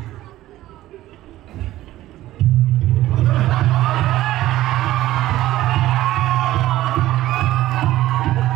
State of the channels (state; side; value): quieter; left; 15.2 dB